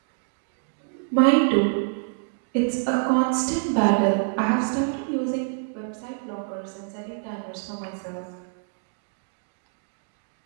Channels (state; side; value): silent; left; digital silence